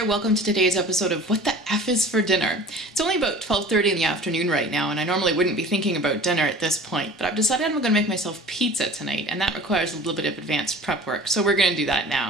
welcome to today's episode of What the F is for Dinner? It's only about 12:30 in the afternoon right now, and I normally wouldn't be thinking about dinner at this point, but I've decided I'm going to make myself pizza tonight, and that requires a little bit of advanced prep work, so we're going to do that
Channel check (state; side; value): normal; both; correlation 0.43